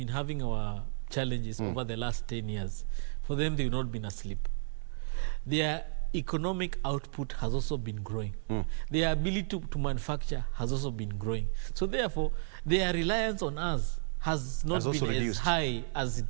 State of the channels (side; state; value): left; silent; 56 dB below the other